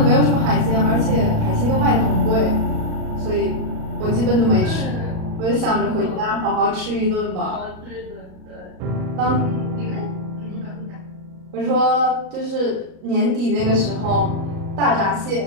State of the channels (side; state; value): left; late; 38 ms